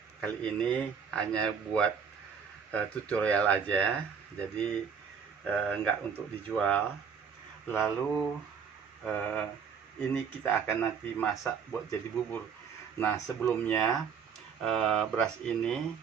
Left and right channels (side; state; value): left; quieter; 6.6 dB